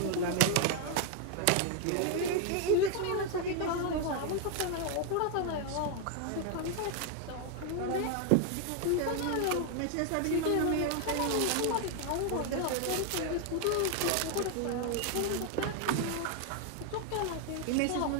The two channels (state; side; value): different; both; correlation 0.00